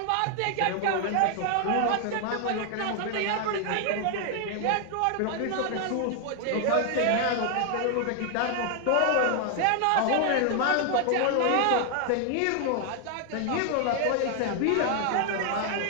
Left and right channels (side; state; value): both; different; correlation 0.00